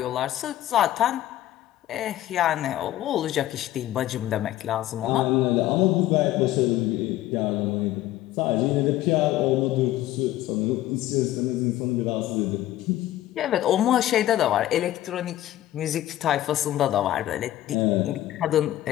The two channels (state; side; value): quieter; right; 14.2 dB